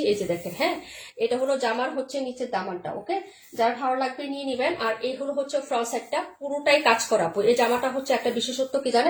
এই যে দেখেন, হ্যাঁ এটা হলো জামার হচ্ছে নিচের দামানটা। ওকে, যার ভালো লাগবে নিয়ে নিবেন। আর এই হলো হচ্ছে ফ্রন্ট সাইডটা, পুরোটাই কাজ করা। এই জামাটা হচ্ছে একটা বিশেষত্ব কি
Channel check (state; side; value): identical; both; correlation 1.00